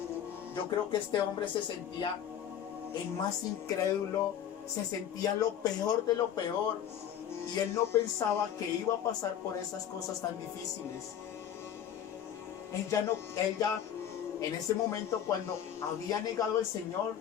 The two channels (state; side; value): quieter; right; 9.7 dB